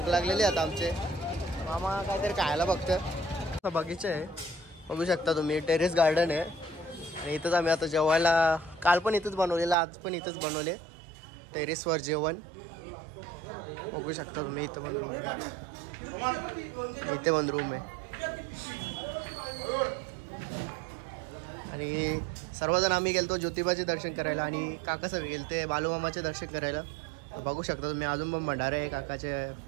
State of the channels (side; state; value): left; drops out; at 9.8 s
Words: लागलेली आता आमचे. मामा काहीतरी खायला बघतं. बगीचा आहे बघू शकता तुम्ही. टेरेस गार्डन आहे आणि इथंच आम्ही आता जेवायला काल पण इथंच बनवलेलं आज पण इथंच बनवले टेरेसवर जेवण. बघू शकता तुम्ही इथं पण रूम आहे. इथे पण रूम आहे आणि सर्वजण आम्ही गेलतो ज्योतिबाचे दर्शन करायला आणि काका सगळे गेलते बालूमामाचे दर्शन करायला. बघू शकता तुम्ही अजून पण भंडारे आहे काकाचे